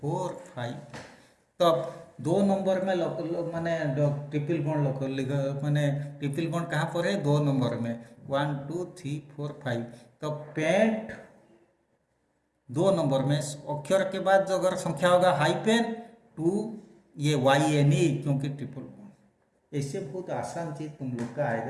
5। तब 2 नंबर में माने ट्रिपल बॉन्ड माने ट्रिपल बॉन्ड कहाँ पर है? 2 नंबर में। 1 2 3 4 5। तब पेंट 2 नंबर में अक्षर के बाद जो अगर संख्या होगा हाइपेन 2 ये YNE, क्योंकि ट्रिपल बॉन्ड। ऐसे बहुत आसान चीज तुम लोग का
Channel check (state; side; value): identical; both; correlation 1.00